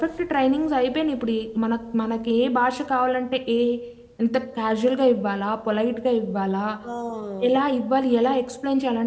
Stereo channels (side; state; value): both; identical; correlation 1.00